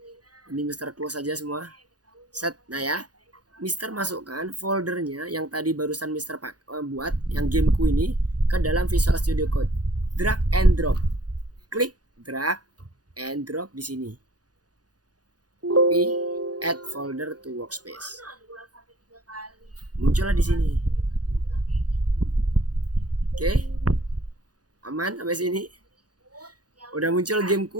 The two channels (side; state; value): left; late; 0.69 ms